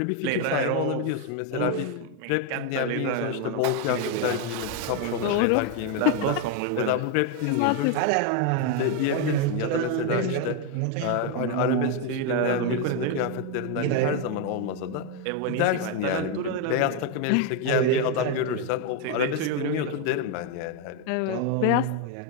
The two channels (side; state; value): both; different; correlation 0.01